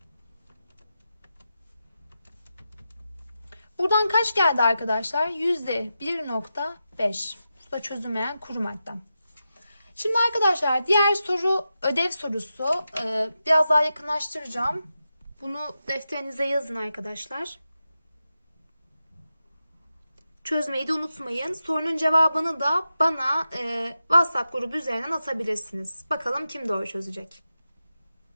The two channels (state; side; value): inverted; both; correlation -0.90